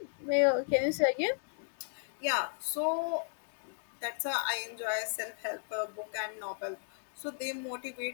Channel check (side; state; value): right; silent; digital silence